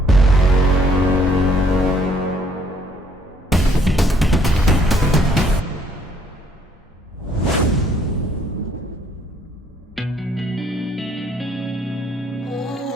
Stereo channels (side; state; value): both; normal; correlation 0.65